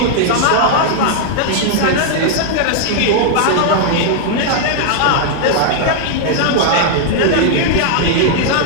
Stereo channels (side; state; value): both; different; correlation -0.01